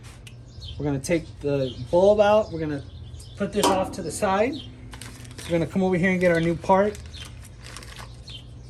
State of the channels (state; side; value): identical; both; correlation 1.00